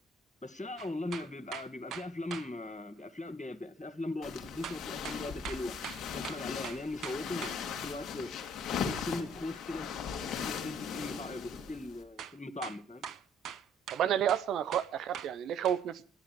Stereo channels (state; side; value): normal; both; correlation 0.60